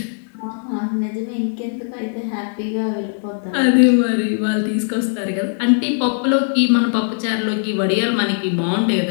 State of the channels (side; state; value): right; silent; digital silence